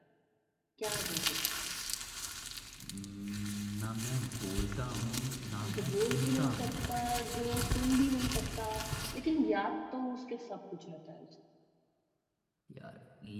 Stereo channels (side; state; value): both; identical; correlation 1.00